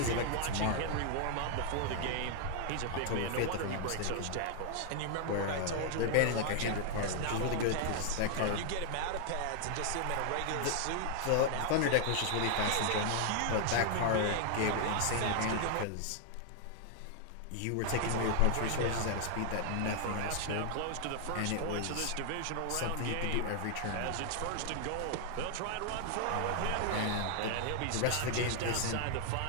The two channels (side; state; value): both; different; correlation 0.00